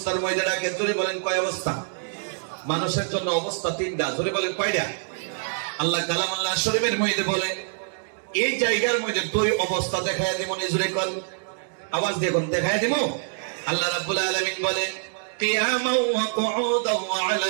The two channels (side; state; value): left; silent; digital silence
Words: মধ্যে ডাকে। জোরে বলেন কয় অবস্থা? মানুষের জন্য অবস্থা তিনটা। জোরে বলেন কয়টা? আল্লাহ কালামুল্লাহ শরীফের মধ্যে বলে এই জায়গার মধ্যে দুই অবস্থা দেখায় দিব। জোরে কোন আওয়াজ দিয়ে কোন দেখায় দিব? আল্লাহ রাব্বুল আলামিন বলে কিয়ামান ওয়া কুউদান ওয়া